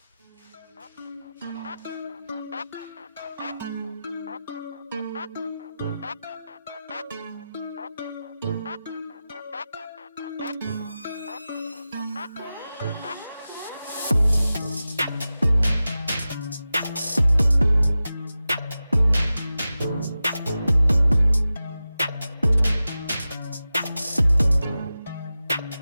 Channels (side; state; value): both; inverted; correlation -0.94